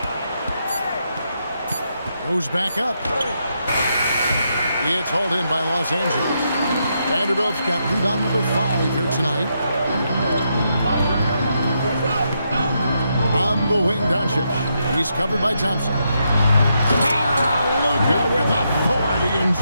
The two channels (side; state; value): both; inverted; correlation -0.81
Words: Goes back up. It's hauled in by Los Angeles. Vanderbilt's got rebound number 5 here tonight. On the wing, Doncic. He's covered by Thompson. Luka with authority